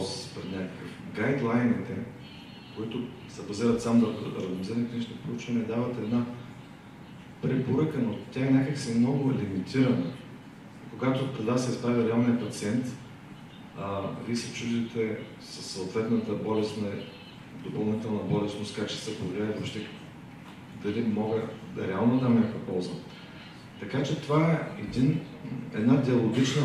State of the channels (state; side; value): identical; both; correlation 1.00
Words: пред някакъв гайдлайните, които се базират само да ранdomизирани клинични проучвания, дават една препоръка, но тя е някакси много лимитирана. Когато пред вас се изправя реалният пациент, вие се чудите със съответната болестна, допълнителна болестност, как ще се повлияе въобще, дали мога да реално дам някаква полза. Така че това е една диалогична